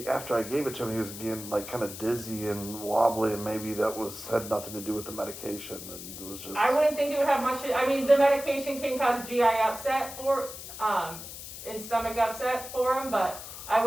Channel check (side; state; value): left; noise; hiss, 11 dB below the sound